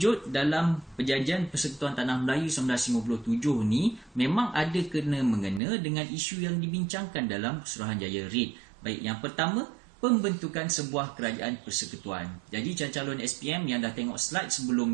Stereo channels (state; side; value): drops out; left; at 5.6 s